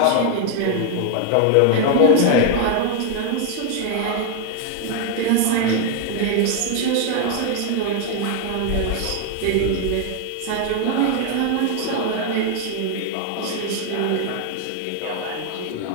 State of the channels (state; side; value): different; both; correlation 0.00